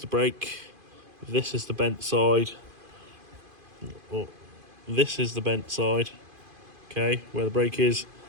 brake, this is the bent side, oh, this is the bent side, okay, where the brake is,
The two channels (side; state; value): left; late; 2.5 ms